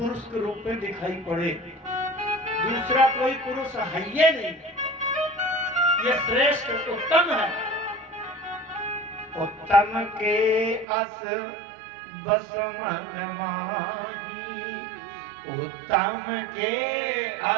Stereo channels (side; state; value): left; drops out; at 10.9 s